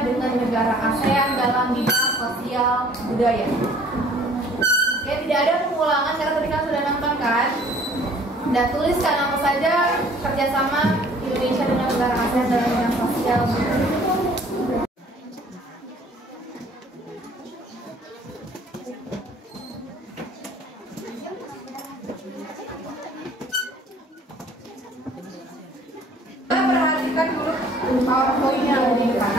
dengan negara ASEAN dalam bidang sosial budaya. Oke, tidak ada pengulangan karena tadi kan sudah nonton kan? Dan tuliskan apa saja kerjasama Indonesia dengan negara ASEAN dalam bidang sosial budaya. Perhatikan dulu PowerPoint yang ada di depan.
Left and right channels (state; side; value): normal; both; correlation 0.55